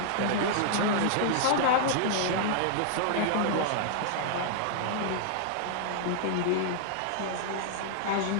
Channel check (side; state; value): both; different; correlation -0.01